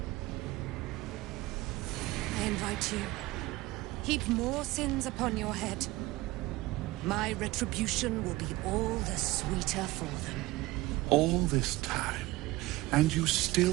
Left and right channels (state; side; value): quieter; left; 19.6 dB